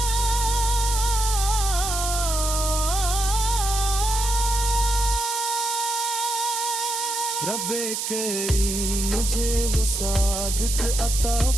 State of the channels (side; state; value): right; noise; hiss, 3 dB below the sound